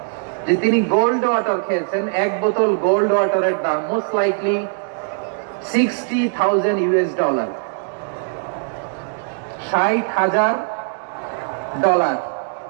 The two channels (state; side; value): silent; left; 63 dB below the other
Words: যে তিনি গোল্ড ওয়াটার খেয়েছেন। এক বোতল গোল্ড ওয়াটারের দাম মোস্ট লাইকলি $60,000, $60,000